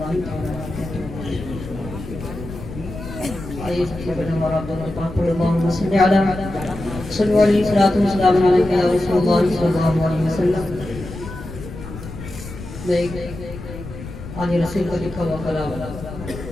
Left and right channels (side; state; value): left; noise; rumble, 11 dB below the sound